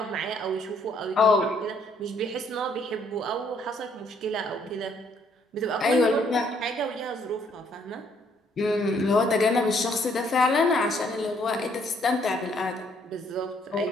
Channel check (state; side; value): normal; both; correlation 0.67